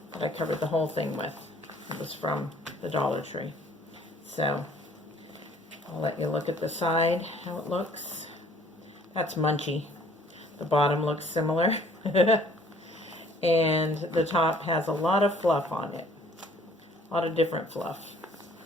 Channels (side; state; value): both; normal; correlation 0.58